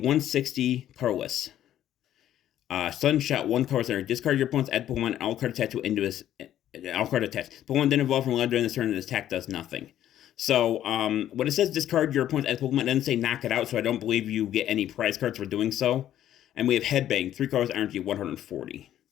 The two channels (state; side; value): quieter; right; 11.7 dB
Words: Carless. Sunshot, 1 card center. Discard your opponent's add Pokemon and all card attached to into his. All card attached. Pokemon then evolve from Loud during this turn and this attack does nothing. So, when it says discard your opponent's add Pokemon, it doesn't say knock it out, so I don't believe you get any prize cards for doing so. And we have Headbang, 3 cards, energy 140.